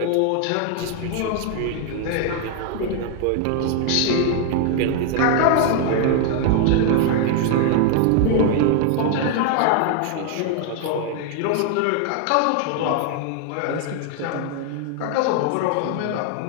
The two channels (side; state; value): both; different; correlation 0.00